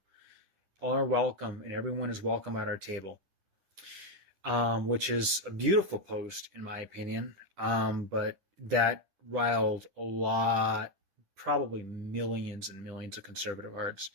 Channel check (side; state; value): left; late; 10 ms